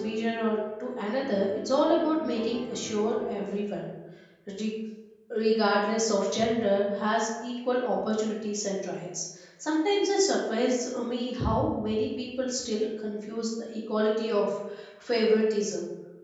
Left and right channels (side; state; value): both; identical; correlation 1.00